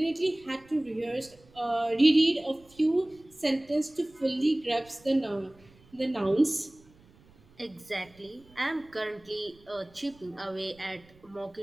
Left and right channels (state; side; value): noise; right; rumble, 27 dB below the sound